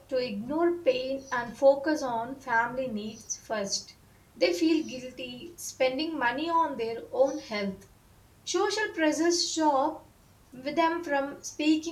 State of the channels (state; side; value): identical; both; correlation 1.00